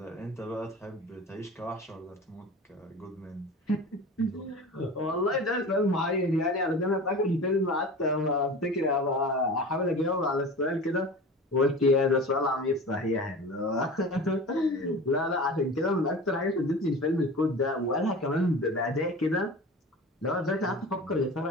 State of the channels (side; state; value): both; normal; correlation 0.35